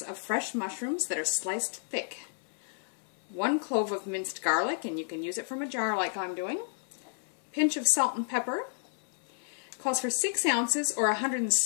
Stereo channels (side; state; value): right; silent; 57 dB below the other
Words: of fresh mushrooms that are sliced thick, 1 clove of minced garlic, and you can use it from a jar like I'm doing, pinch of salt and pepper, calls for 6 ounces or